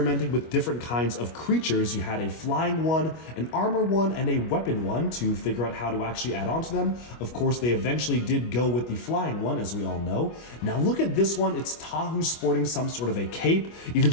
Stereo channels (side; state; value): right; late; 25 ms